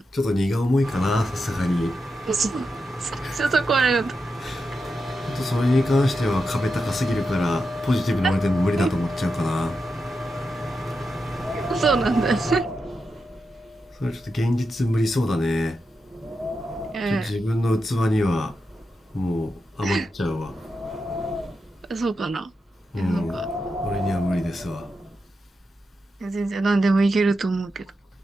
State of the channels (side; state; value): both; normal; correlation 0.87